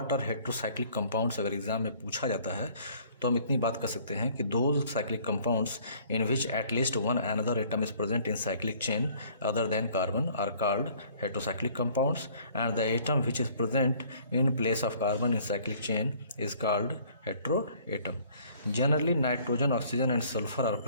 are heterocyclic compounds. अगर एग्जाम में पूछा जाता है तो हम इतनी बात कर सकते हैं कि दो cyclic compounds in which at least one another atom is present in cyclic chain other than carbon are called heterocyclic compounds, and the atom which is present in place of carbon in cyclic chain is called heteroatom. Generally nitrogen, oxygen and sulphur are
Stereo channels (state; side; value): inverted; both; correlation -0.56